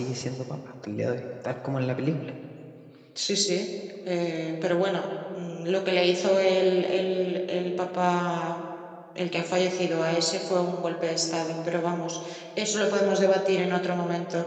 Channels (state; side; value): identical; both; correlation 1.00